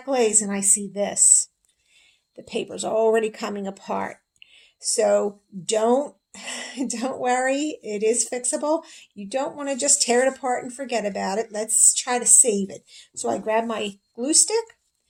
glaze and I see this. The paper's already coming apart. So don't worry, it is fixable. You don't want to just tear it apart and forget about it. Let's try to save it. So I grab my glue stick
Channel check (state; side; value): identical; both; correlation 1.00